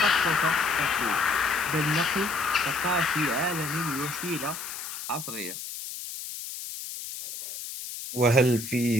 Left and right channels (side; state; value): left; noise; hiss, 9 dB below the sound